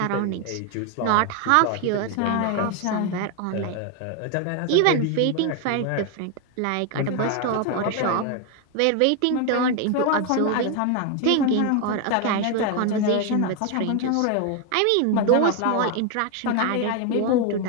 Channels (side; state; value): both; different; correlation 0.01